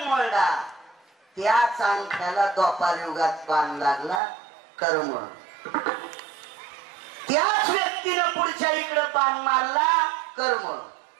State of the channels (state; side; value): drops out; left; at 4.2 s